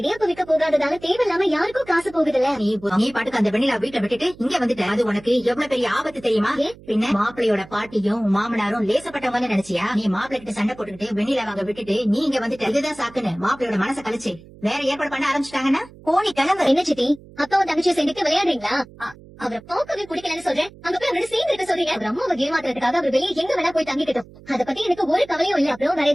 விற்க போகாததால தேவையில்லாம யாருக்கும் காசு போகுதுல்ல. நீ பாட்டுக்கு அந்த வெண்ணிலா வீட்டை விட்டுட்டு இங்க வந்துட்ட. அது உனக்கு எவ்வளவு பெரிய ஆபத்து தெரியுமா? பின்ன மாப்பிள்ளையோட பாட்டியும் மாமனாரும் லேசப்பட்டவங்க நினைச்சியா? நீ மாப்பிள்ளை கிட்ட சண்டை போட்டுக்கிட்டு வெண்ணிலா வாங்க விட்டுட்டு நீ இங்க வந்துட்ட. இதுதான் சாக்குன்னு மாப்பிள்ளையோட மனசை கழிச்சு வேற ஏற்பாடு பண்ண ஆரம்பிச்சுட்டாங்கன்னா போனி கிளம்பு. என்ன சித்தி, அப்பாவும் தங்கச்சியை சேர்ந்துட்டு விளையாடுறீங்களா? அவரை பார்க்கவே பிடிக்கலன்னு சொல்றேன். அங்க போய் அவரோட சேர்ந்து இருக்க சொல்றீங்க. அவர் அம்மாவை ஏமாத்துறதுக்காக அவர் வெளியே எங்க வேணா போய் தங்கிக்கிட்டோம். அதை பத்தி எனக்கு ஒரு கவலையும் இல்ல. அப்புறம் வேற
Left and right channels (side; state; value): right; noise; hum, 21 dB below the sound